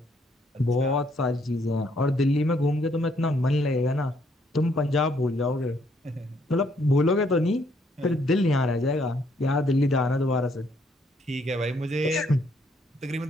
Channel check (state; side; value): normal; both; correlation 0.69